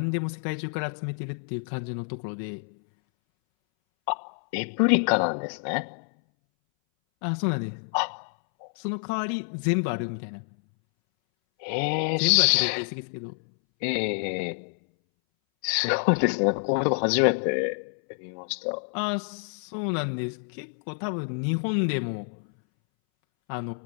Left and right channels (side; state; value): right; silent; 60 dB below the other